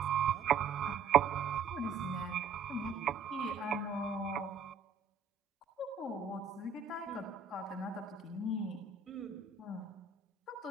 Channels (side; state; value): left; quieter; 5.8 dB